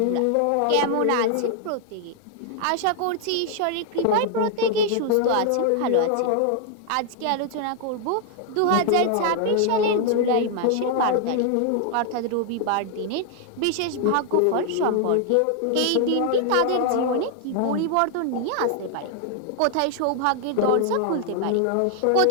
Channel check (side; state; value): both; different; correlation 0.00